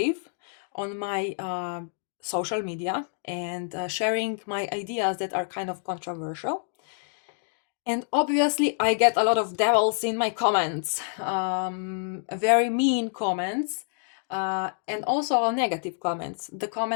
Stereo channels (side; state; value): right; silent; digital silence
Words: on my social media and sharing my ideas that are kind of controversial. And obviously, I get a lot of devils in my comments, very mean comments, and also negative comments, the